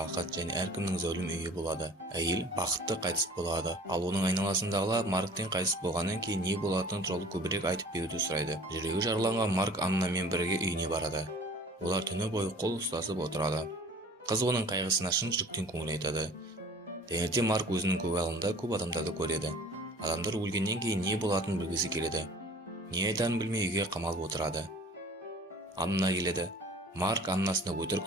және әркімнің зәулім үйі болады. Әйел бақытты қайтыс болады. Ал оның айналасындағылар Марктен қайтыс болғаннан кейін не болатыны туралы көбірек айтып беруді сұрайды. Жүрегі жараланған Марк Аннамен бірге үйіне барады. Олар түні бойы қол ұстасып отырады. Қыз оның қайғысына шын жүректен көңіл айтады. Таңертең Марк өзінің көгалында көп адамдарды көреді. Адамдар өлгеннен кейін не болатынын білгісі келеді. Не айтарын білмей үйге қамалып отырады. Анна келеді. Марк Аннасына өтірік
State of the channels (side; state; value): both; normal; correlation 0.48